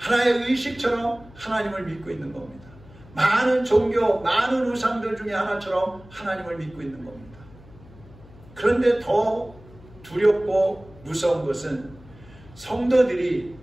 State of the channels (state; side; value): noise; left; hum, 22 dB below the sound